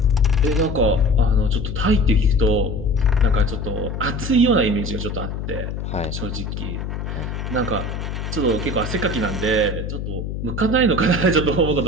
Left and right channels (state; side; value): noise; left; hum, 5 dB below the sound